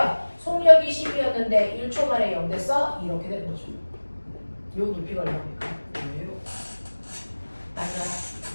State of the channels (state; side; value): inverted; both; correlation -1.00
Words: 속력이 10이었는데 1초 만에 0 됐어? 이렇게 되는 거죠. 요 높이가 얼마입니까? 왜요? 맞아.